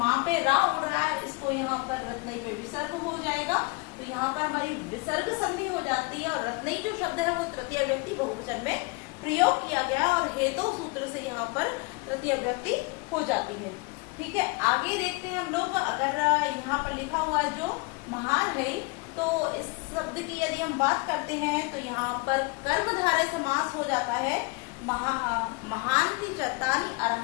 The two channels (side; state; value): right; quieter; 27.8 dB